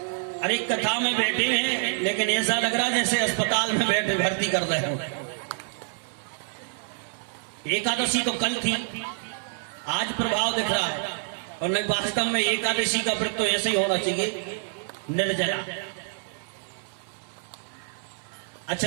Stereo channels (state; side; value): silent; left; 59 dB below the other